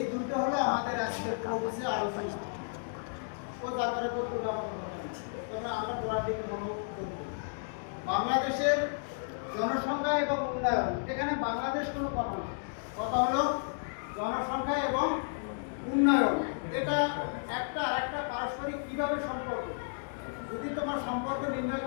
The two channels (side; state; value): right; silent; digital silence